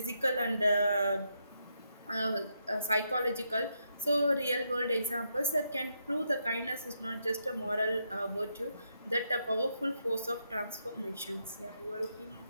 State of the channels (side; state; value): both; inverted; correlation -0.80